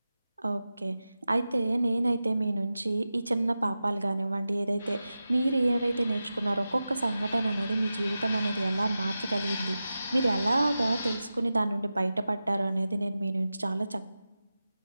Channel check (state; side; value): inverted; both; correlation -0.94